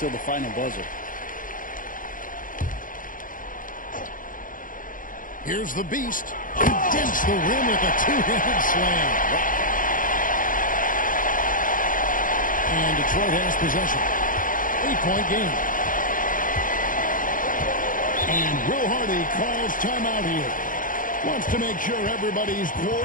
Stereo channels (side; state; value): right; late; 0.39 ms